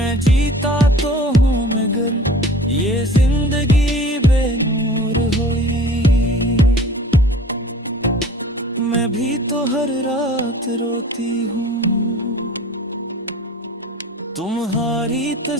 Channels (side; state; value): both; normal; correlation 0.44